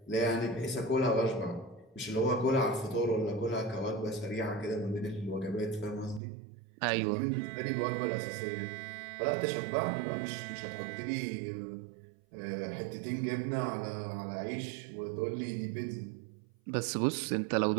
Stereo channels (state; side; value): drops out; left; at 6.2 s